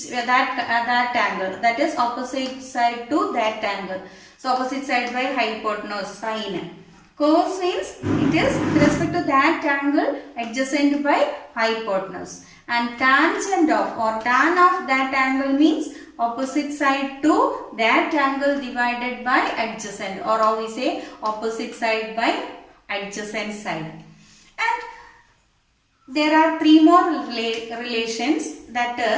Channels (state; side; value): identical; both; correlation 1.00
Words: that angle. That is opposite side to that angle. So opposite side by hypotenuse, sine. Cos means it is with respect to that angle adjacent by hypotenuse. And tangent of, or tan of that angle means opposite side to that angle divided by adjacent, or how we say opposite side by adjacent side. And there are three more relations, that